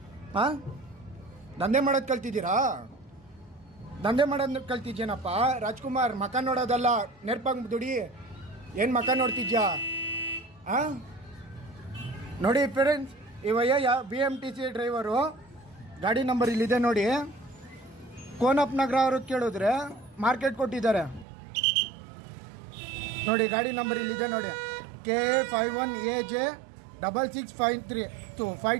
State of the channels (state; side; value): drops out; left; at 21.2 s